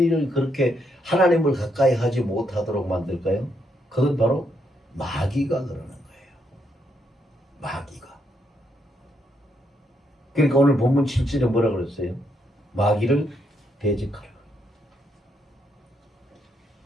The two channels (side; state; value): both; normal; correlation 0.77